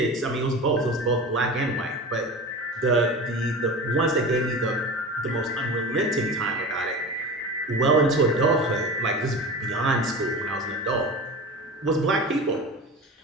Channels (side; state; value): both; normal; correlation 0.31